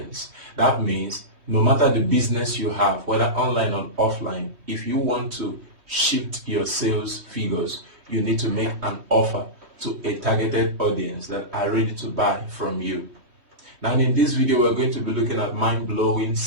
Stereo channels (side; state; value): left; late; 3.2 ms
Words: That means no matter the business you have, whether online or offline, if you want to shift your sales figures, you need to make an offer to a targeted audience that are ready to buy from you. Now in this video, we're going to be looking at mind-blowing